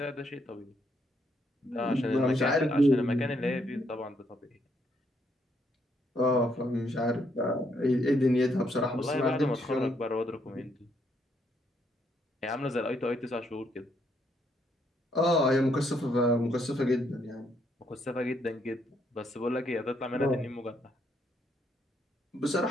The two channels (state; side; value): normal; both; correlation 0.74